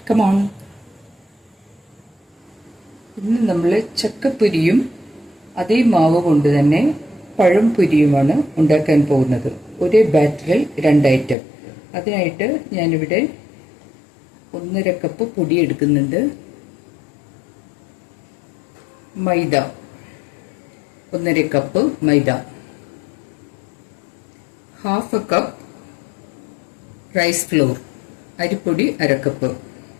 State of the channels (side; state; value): right; drops out; at 11.4 s